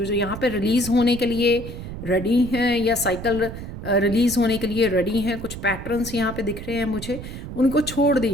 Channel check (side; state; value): right; noise; rumble, 10 dB below the sound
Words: जो यहाँ पे रिलीज़ होने के लिए रेडी हैं या साइकिल रिलीज़ होने के लिए रेडी हैं, कुछ पैटर्न्स यहाँ पे दिख रहे हैं मुझे, उनको छोड़